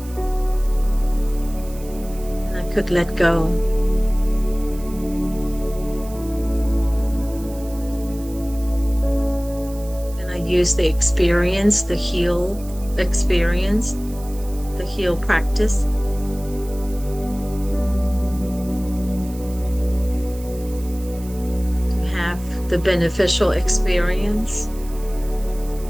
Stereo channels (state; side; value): noise; right; hiss, 19 dB below the sound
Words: And I could let go. And I used the experience, the heal experience, the heal practice, to have the beneficial experience,